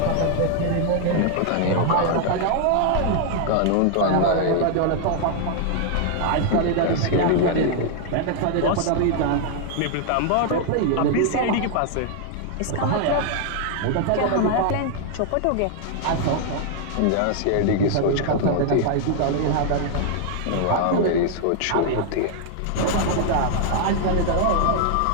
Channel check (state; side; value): different; both; correlation 0.00